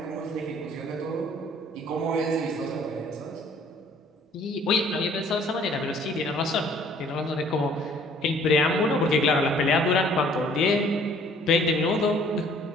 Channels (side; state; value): both; normal; correlation 0.57